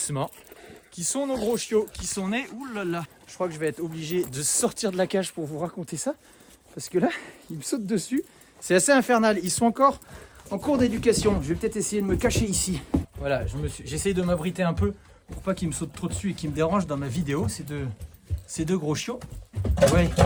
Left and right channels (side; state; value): both; identical; correlation 1.00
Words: qui sont nos gros chiots, qui sont nés, oulala, je crois que je vais être obligé de sortir de la cage pour vous raconter ça, parce que là, ils me sautent dessus, c'est assez infernal, ils sont encore en cours d'éducation, je vais peut-être essayer de me cacher ici. Voilà, j'essaye de m'abriter un peu pour pas qu'ils me sautent trop dessus et qu'ils me dérangent dans ma vidéo, ces deux gros chiots. Ouais.